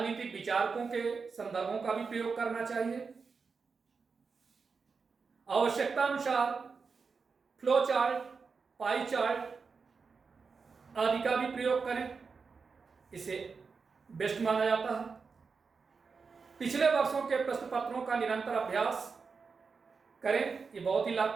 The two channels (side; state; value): left; quieter; 5.0 dB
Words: विचारकों के संदर्भों का भी प्रयोग करना चाहिए। आवश्यकता अनुसार फ्लो चार्ट, पाई चार्ट आदि का भी प्रयोग करें, इसे बेस्ट माना जाता है। पिछले वर्षों के प्रश्न पत्रों का निरंतर अभ्यास करें, ये बहुत ही